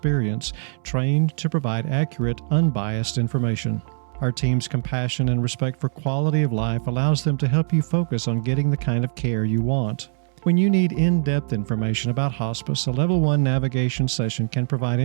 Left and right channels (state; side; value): silent; left; 64 dB below the other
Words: trained to provide accurate, unbiased information. Our team's compassion and respect for quality of life allows them to help you focus on getting the kind of care you want. When you need in-depth information about hospice, a Level 1 navigation session can provide